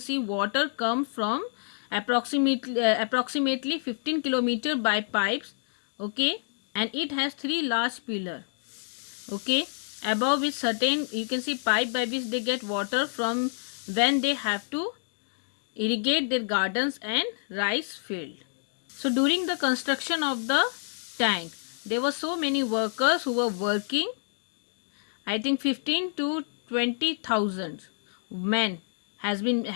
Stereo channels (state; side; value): silent; right; digital silence